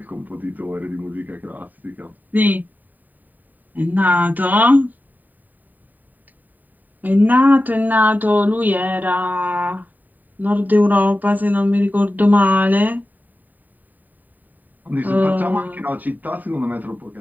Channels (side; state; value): left; late; 0.086 ms